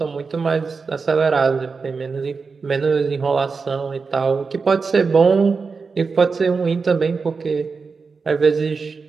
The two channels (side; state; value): left; quieter; 4.8 dB